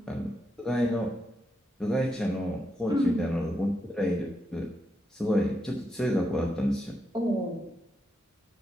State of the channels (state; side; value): normal; both; correlation 0.83